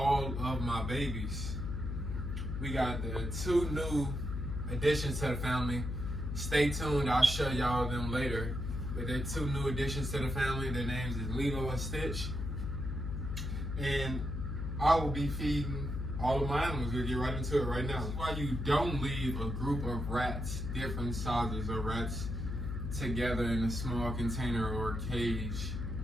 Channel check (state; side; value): noise; left; hum, 3 dB below the sound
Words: of my babies. We got the two new additions to the family. Stay tuned, I'll show y'all them later. But they're two new additions to the family. Their names is Lilo and Stitch. And I will be feeding all of my animals. We'll get right into it right now. That's why you don't leave a group of rats, different sizes of rats, together in a small container or cage